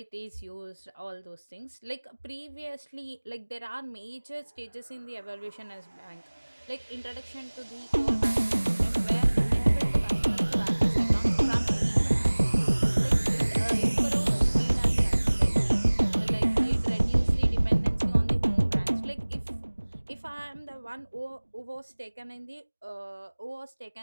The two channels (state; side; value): inverted; both; correlation -1.00